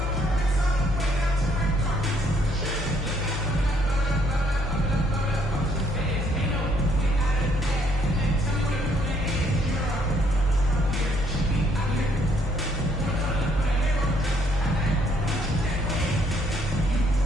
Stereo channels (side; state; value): both; normal; correlation 0.67